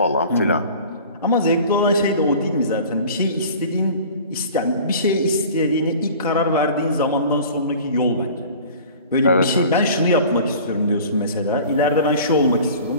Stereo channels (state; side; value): inverted; both; correlation -0.43